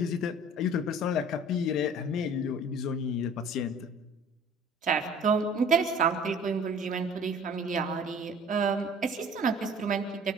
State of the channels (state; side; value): normal; both; correlation 0.48